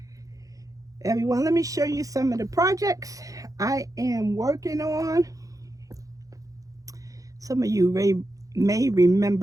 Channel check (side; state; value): left; late; 0.17 ms